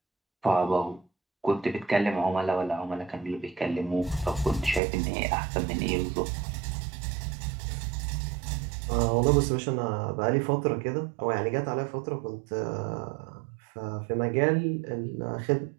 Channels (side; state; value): left; drops out; at 4.8 s